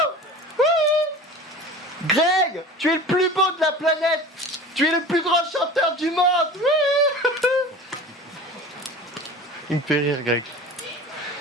Greg, tu es le plus beau de la planète. Tu es le plus grand chanteur du monde. Il me fait rire, Greg.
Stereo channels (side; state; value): both; normal; correlation 0.37